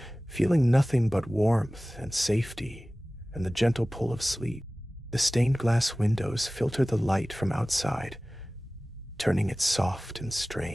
feeling nothing but warmth and safety and the gentle pull of sleep. The stained glass windows filter the light from outside, turning it soft and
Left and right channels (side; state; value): both; normal; correlation 0.97